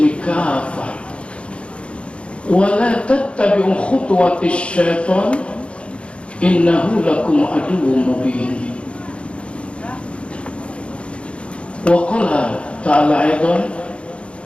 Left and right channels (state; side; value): late; right; 0.059 ms